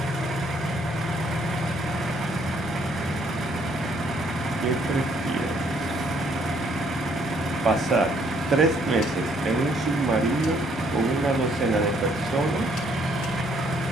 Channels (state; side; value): normal; both; correlation 0.67